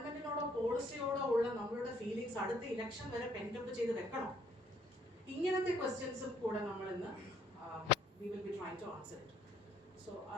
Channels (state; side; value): normal; both; correlation 0.65